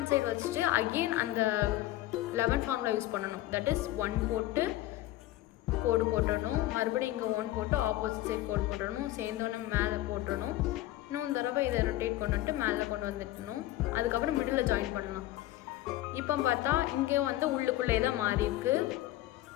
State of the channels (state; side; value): quieter; right; 15.6 dB